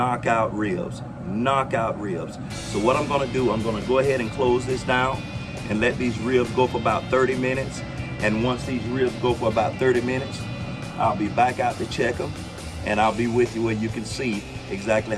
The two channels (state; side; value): identical; both; correlation 1.00